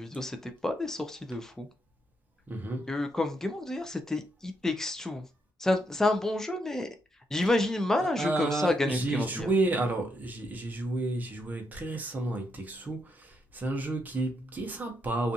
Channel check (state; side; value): normal; both; correlation 0.79